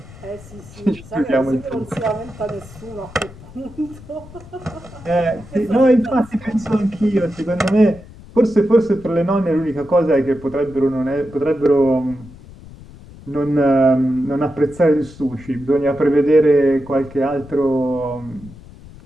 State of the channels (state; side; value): noise; left; rumble, 19 dB below the sound